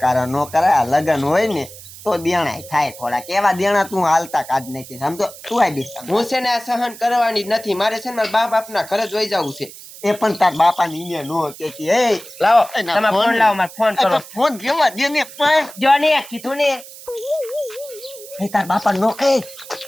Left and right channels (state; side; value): noise; right; hiss, 17 dB below the sound